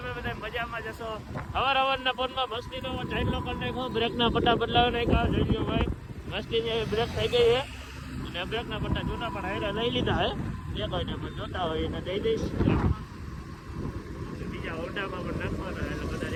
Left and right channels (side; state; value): both; identical; correlation 1.00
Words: બધા મજામાં જશો. હવારના ફોનમાં મસ્તીનો ચાઇલ્ડ લોકર નાખો, બ્રેકના પટ્ટા બદલાવી નાખ્યા. જોઈ લો ભાઈ, મસ્તીની બ્રેક થઈ ગઈ છે અને બ્રેકના પટ્ટા જૂના પણ હારે લઈ લીધા હે. જે કોઈને પણ જોતા હોય એને દઈ દઈશ. બીજા હોન્ડામાં પણ નાખવાના એટલે બધા